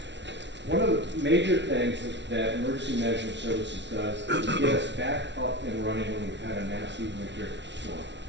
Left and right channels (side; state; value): left; late; 0.51 ms